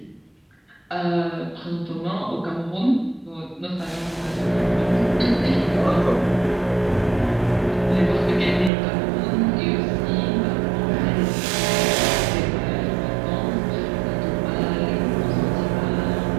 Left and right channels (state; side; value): drops out; left; at 8.7 s